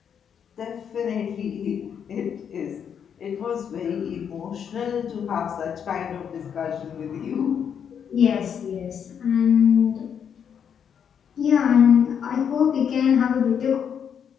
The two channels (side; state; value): right; quieter; 7.9 dB